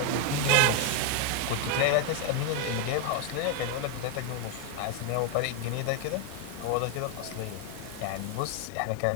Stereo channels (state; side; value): different; both; correlation 0.01